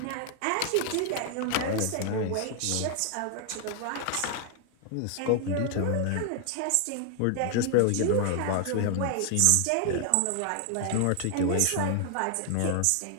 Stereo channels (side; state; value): both; different; correlation 0.00